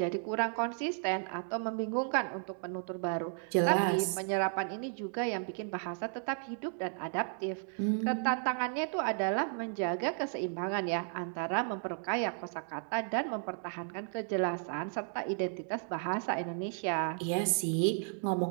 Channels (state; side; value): silent; left; 55 dB below the other